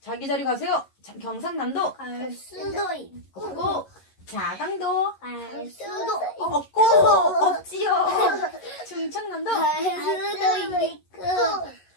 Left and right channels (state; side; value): late; right; 11 ms